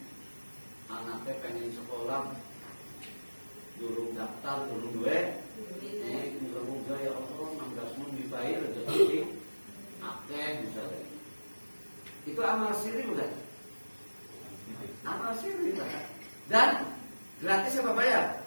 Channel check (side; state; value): both; inverted; correlation -1.00